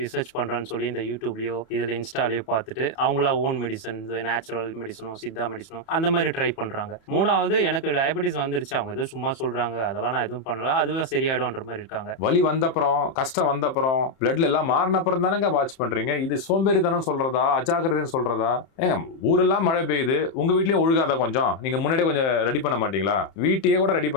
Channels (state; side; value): late; right; 31 ms